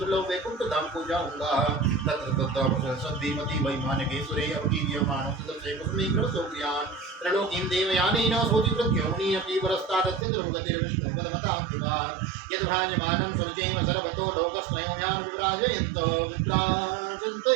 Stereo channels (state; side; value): drops out; left; at 10.2 s